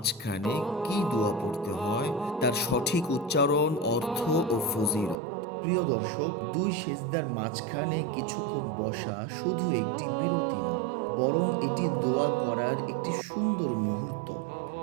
কি দোয়া পড়তে হয়, তার সঠিক উচ্চারণ, অর্থ ও ফজিলত। প্রিয় দর্শক, দুই সেজদার মাঝখানে কিছুক্ষণ বসা শুধু একটি বিরতি নয়, বরং এটি দোয়া করার একটি সুন্দর মুহূর্ত।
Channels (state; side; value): drops out; left; at 5.2 s